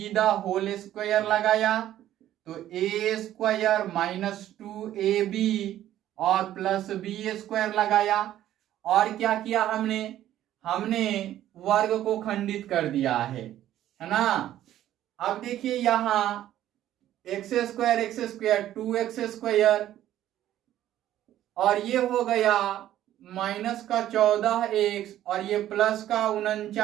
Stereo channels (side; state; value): left; quieter; 12.6 dB